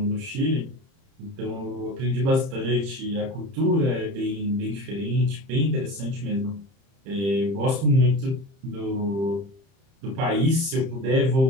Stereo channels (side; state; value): left; late; 30 ms